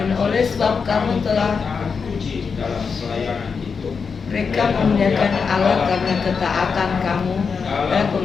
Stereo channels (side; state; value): right; quieter; 5.6 dB